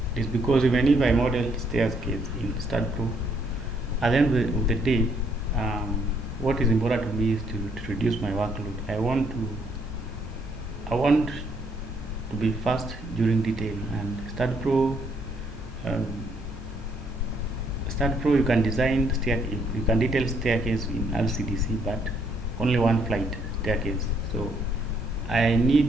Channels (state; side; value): normal; both; correlation 0.70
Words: because even if I model staircase in Staad Pro, at the end of the day, what is important to me is to reduce my workload. I want to be fast during detail, and um, Staad Pro, you can you can detail staircase in LCDC, but only one flight staircase. So I need,